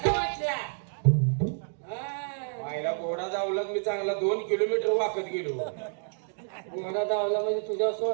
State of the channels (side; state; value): left; silent; digital silence